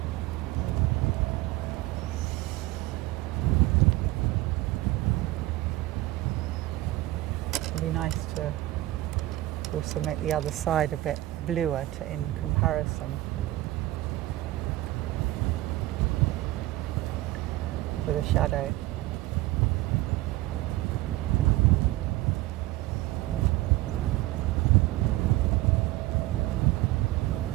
It'd be nice to also make the other side a bit bluer in comparison for the shadow.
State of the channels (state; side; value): quieter; left; 17.5 dB